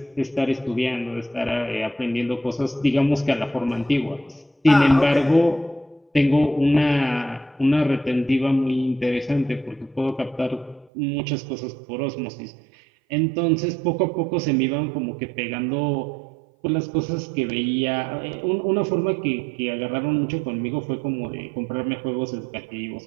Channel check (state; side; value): drops out; left; at 10.9 s